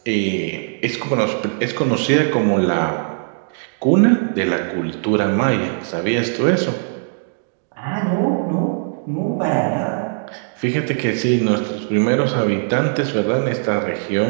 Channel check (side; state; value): left; silent; digital silence